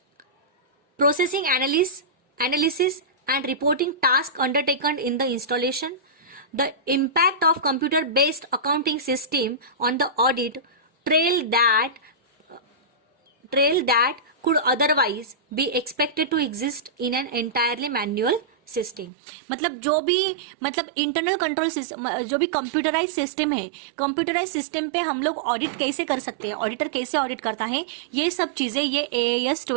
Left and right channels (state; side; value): drops out; left; at 19.1 s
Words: processing analysis and reporting task undertaken in the installation, the impact of computer based accounting system on the audit trail that could otherwise be expected to exist in an entirely manual system. मतलब जो भी internal control system, जो भी computerise system है, computerise system पे हम लोग audit कैसे कर सकते हैं, ऑडिटर कैसे ऑडिट करता है, ये सब चीजें ये AAS